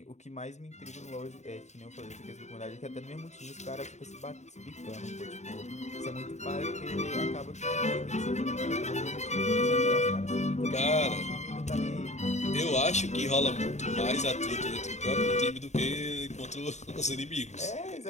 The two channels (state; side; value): late; right; 0.33 ms